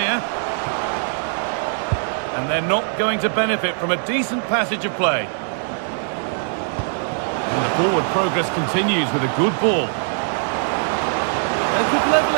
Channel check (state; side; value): silent; left; digital silence